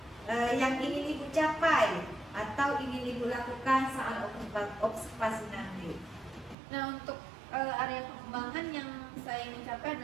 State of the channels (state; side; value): drops out; left; at 6.6 s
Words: yang ingin Ibu capai atau ingin Ibu lakukan saat observasi nanti? Nah, untuk area pengembangan yang saya ingin capai